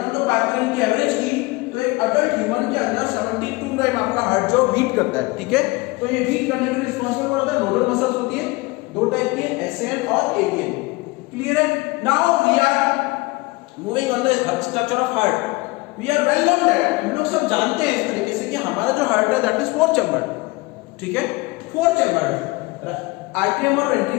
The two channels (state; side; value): quieter; right; 23.2 dB